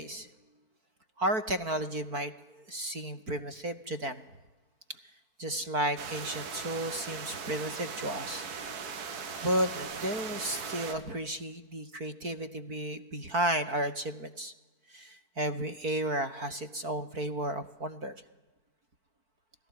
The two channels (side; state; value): left; late; 4.5 ms